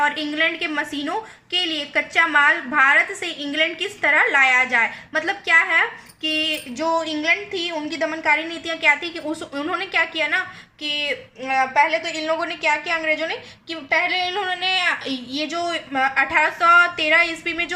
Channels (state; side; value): identical; both; correlation 1.00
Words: इंग्लैंड के मशीनों के लिए कच्चा माल भारत से इंग्लैंड किस तरह लाया जाए। मतलब क्या है कि जो इंग्लैंड थी उनकी दमनकारी नीतियां क्या थी कि उन्होंने क्या किया ना कि पहले तो इन लोगों ने क्या किया, अंग्रेजों ने, कि पहले इन्होंने ये जो 1813 ईस्वी में